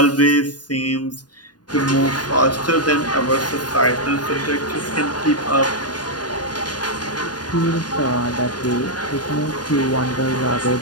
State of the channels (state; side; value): late; right; 0.69 ms